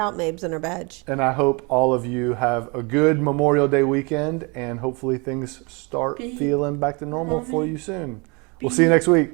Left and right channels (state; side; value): quieter; left; 30.3 dB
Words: Mabes and her badge. And I hope all of you have a good Memorial Day weekend, and hopefully things start feeling back to normal for you soon. We'll see you next week.